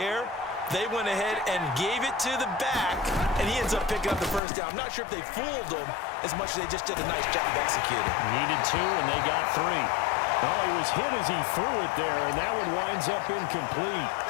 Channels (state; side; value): drops out; right; at 4.4 s